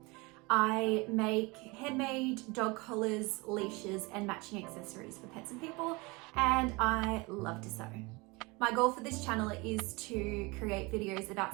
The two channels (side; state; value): left; quieter; 25.7 dB